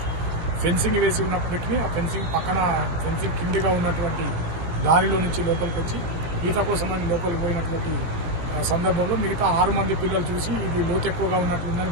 ఫెన్సింగ్ వేసి ఉన్నప్పటికీ ఆ ఫెన్సింగ్ కిందగా ఉన్నటువంటి దారిలో నుంచి లోపలికి వచ్చి ఈత కోసం అని లోపలికి పోయినటువంటి సందర్భంలో మిగతా 6 మంది పిల్లలు చూసి ఇది లోతు ఎక్కువగా ఉన్నట్లుందని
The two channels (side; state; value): left; late; 18 ms